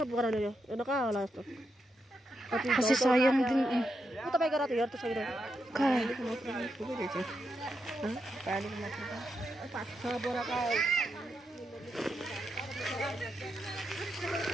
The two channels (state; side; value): normal; both; correlation 0.84